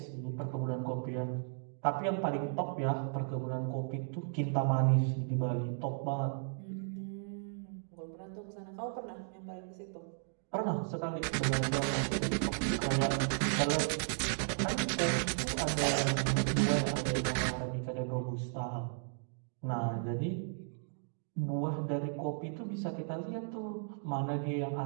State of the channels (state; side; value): silent; left; digital silence